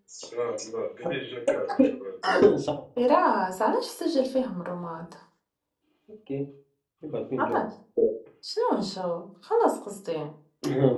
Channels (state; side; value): identical; both; correlation 1.00